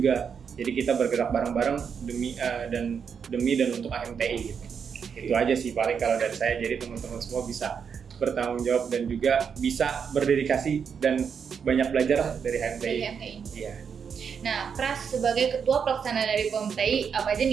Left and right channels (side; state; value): left; quieter; 6.8 dB